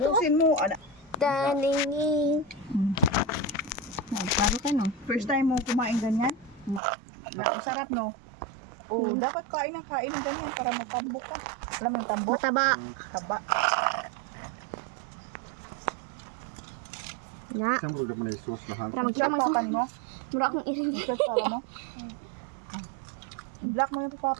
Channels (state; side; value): drops out; left; at 6.8 s